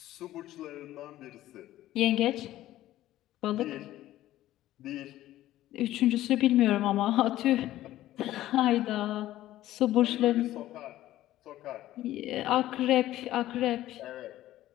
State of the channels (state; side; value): quieter; right; 14.5 dB